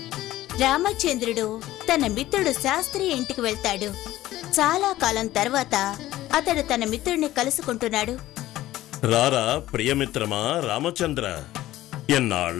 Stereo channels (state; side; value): quieter; right; 15.2 dB